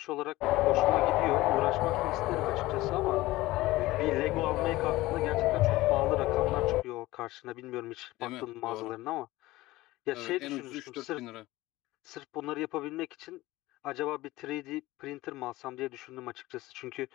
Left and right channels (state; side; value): quieter; right; 18.3 dB